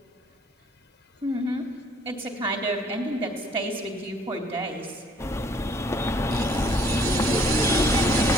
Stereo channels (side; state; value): both; normal; correlation 0.59